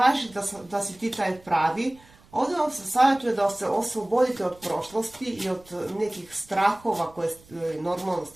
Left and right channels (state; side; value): noise; right; rumble, 26 dB below the sound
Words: da si ti taj pravi. Ovdje vam se savjetuje da se oslobodite od prošlosti i od nekih strahova, normalno